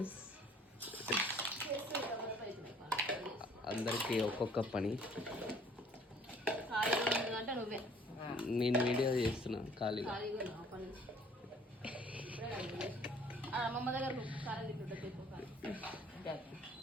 అందరికీ ఒక్కొక్క పని. నేను వీడియో చేస్తున్నా ఖాళీగా.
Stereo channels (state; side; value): normal; both; correlation 0.56